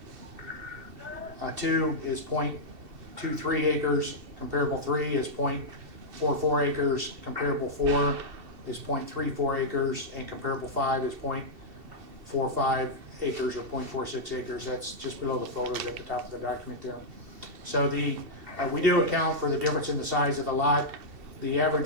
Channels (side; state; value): left; late; 2.7 ms